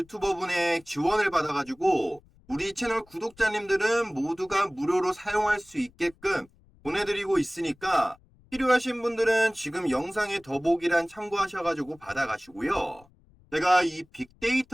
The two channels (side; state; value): left; noise; rumble, 29 dB below the sound